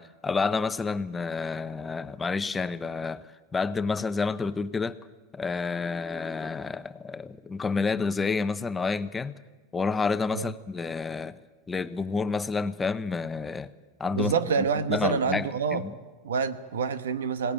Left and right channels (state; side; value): normal; both; correlation 0.47